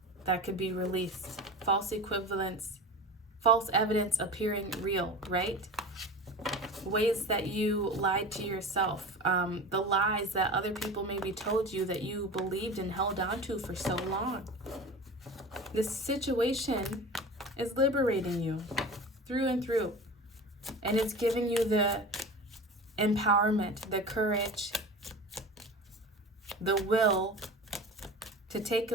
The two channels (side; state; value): both; normal; correlation 0.33